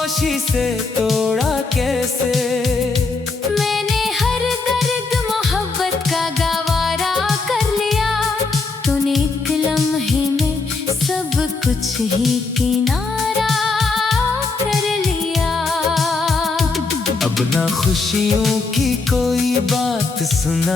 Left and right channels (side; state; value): right; quieter; 4.0 dB